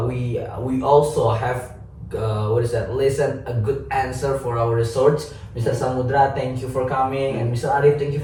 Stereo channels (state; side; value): identical; both; correlation 1.00